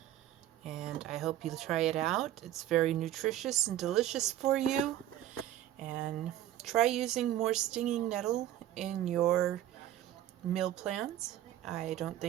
and I hope you try it out. It's very nutritious and delicious for you, and try using more stinging nettle in your meal plans. I don't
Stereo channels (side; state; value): left; quieter; 12.6 dB